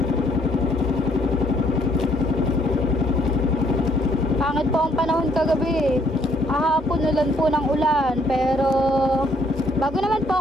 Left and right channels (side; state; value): both; normal; correlation 0.67